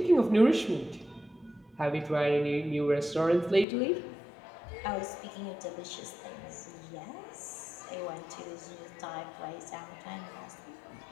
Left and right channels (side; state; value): right; drops out; at 3.7 s